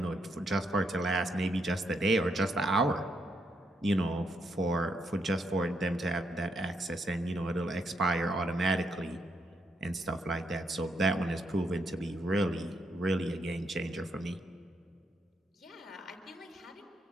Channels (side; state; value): both; normal; correlation 0.78